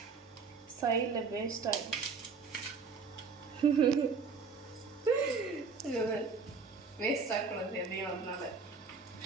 சைடில் வேஸ்ட் ஆகிடும். வேஸ்ட் ஆகக்கூடாது எதையும். அதனால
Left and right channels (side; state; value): left; quieter; 4.9 dB